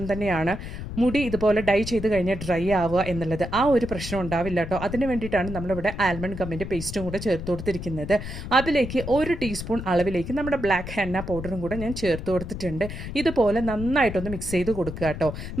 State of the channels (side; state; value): left; noise; rumble, 8 dB below the sound